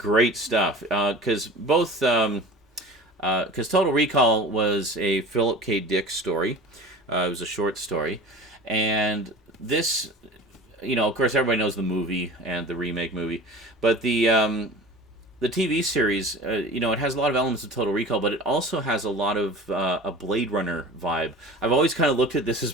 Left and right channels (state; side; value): normal; both; correlation 0.38